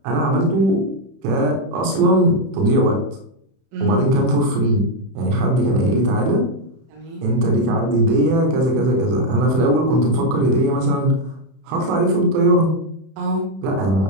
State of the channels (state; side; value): late; left; 31 ms